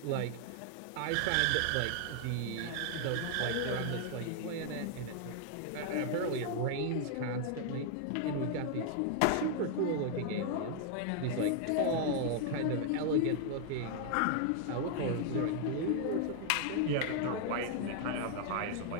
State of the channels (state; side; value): different; both; correlation 0.00